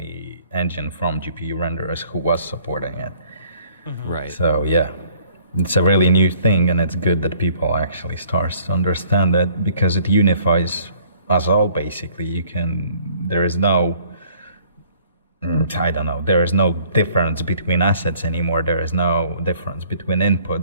engine from GPU renderers who was supporting it. Right. So yeah, it's a really new thing, and it's good that people actually start to understand that, because it unifies us all basically. There is no difference between assets anymore. There is no difference between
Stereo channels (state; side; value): inverted; both; correlation -0.58